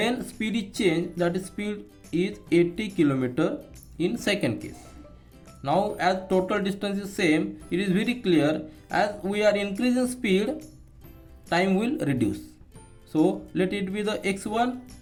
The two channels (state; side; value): identical; both; correlation 1.00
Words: speed is changed, that is speed is 80 km in second case. Now as total distance is same, it is very clear, as we are increasing speed, time will reduce. So let it be the x1